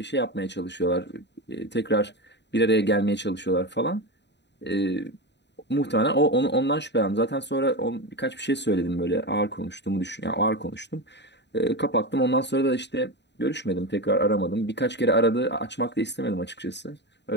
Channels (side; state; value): right; late; 0.51 ms